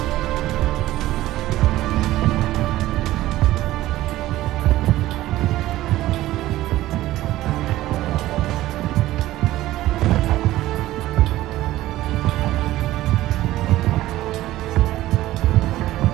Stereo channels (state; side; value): quieter; left; 15.6 dB